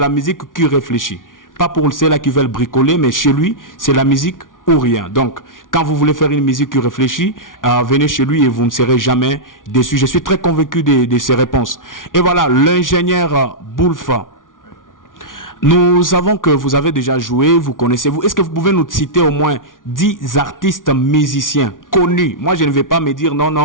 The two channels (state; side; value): late; right; 0.88 ms